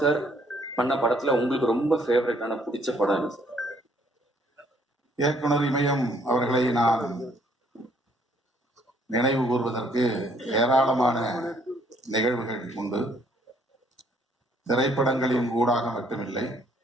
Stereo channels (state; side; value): normal; both; correlation 0.65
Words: சார் பண்ண படத்துல உங்களுக்கு ரொம்ப ஃபேவரட்டான பிடிச்ச படம் என்ன சார்? இயக்குனர் இமயம் அவர்களை நான் நினைவு கூறுவதற்கு ஏராளமான நிகழ்வுகள் உண்டு. திரைப்படங்களின் ஊடாக மட்டுமில்லை,